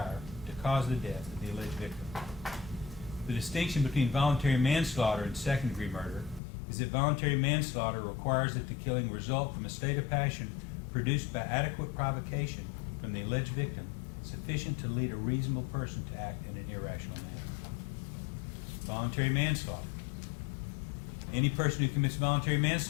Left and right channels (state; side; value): drops out; right; at 6.4 s